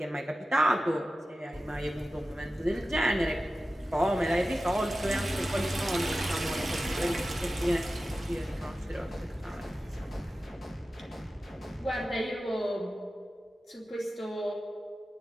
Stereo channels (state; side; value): normal; both; correlation 0.94